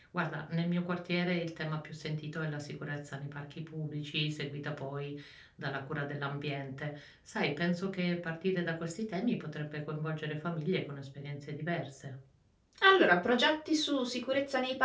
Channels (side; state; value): both; identical; correlation 1.00